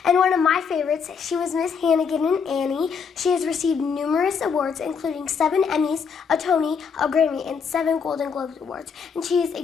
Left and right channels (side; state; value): right; quieter; 6.1 dB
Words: and one of my favorites, she was Miss Hannigan in Annie. She has received numerous awards, including 7 Emmys, a Tony, a Grammy, and 7 Golden Globes awards. And she is